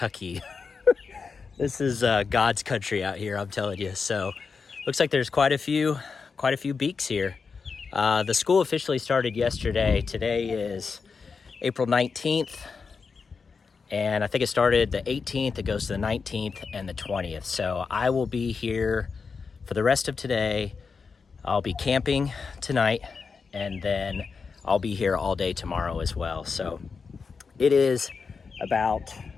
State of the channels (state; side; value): quieter; right; 5.2 dB